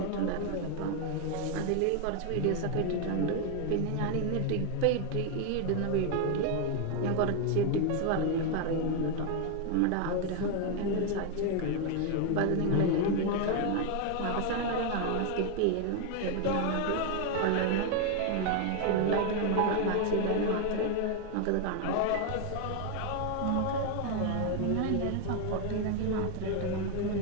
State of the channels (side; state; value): both; different; correlation 0.01